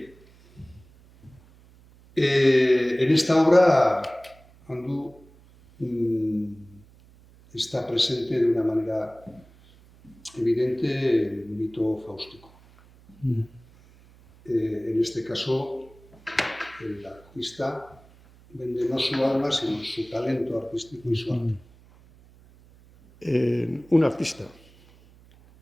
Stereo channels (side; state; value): right; noise; hum, 26 dB below the sound